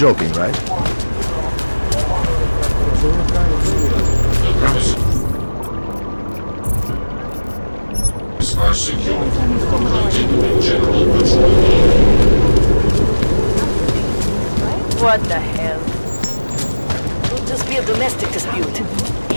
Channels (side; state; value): both; inverted; correlation -1.00